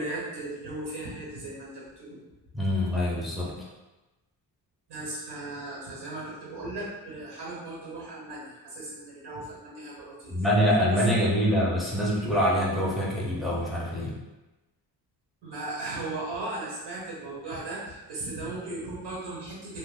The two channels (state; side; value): normal; both; correlation 0.38